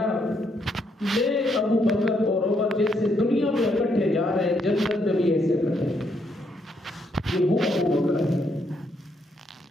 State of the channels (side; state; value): both; normal; correlation 0.75